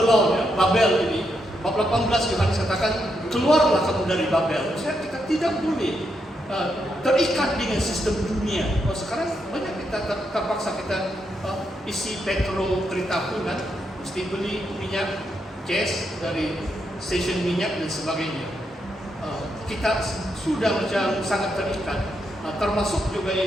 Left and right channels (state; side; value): normal; both; correlation 0.81